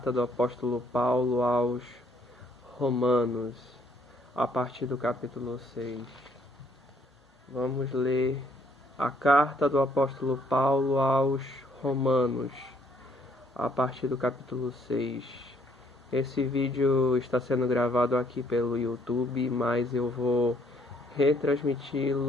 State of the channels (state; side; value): normal; both; correlation 0.66